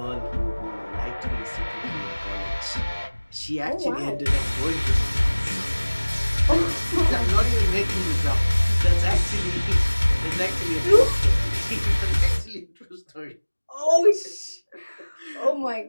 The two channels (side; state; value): both; inverted; correlation -1.00